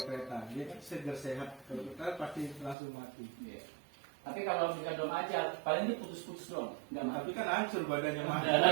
kereta. Dia kan segar sehat, kalau kita pasti langsung mati. Iya. Tapi kalau misalkan belum ajal, paling dia putus-putus doang, nggak mati. Tapi kan hancur badannya mati.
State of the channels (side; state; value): left; drops out; at 2.8 s